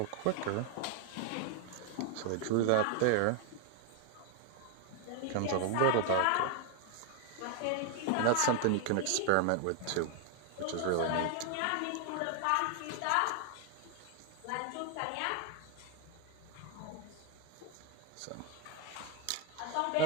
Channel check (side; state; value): both; different; correlation 0.00